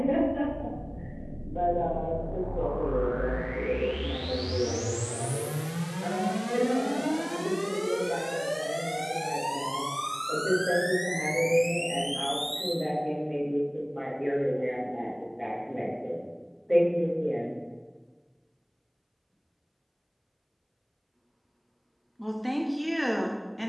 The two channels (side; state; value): both; identical; correlation 1.00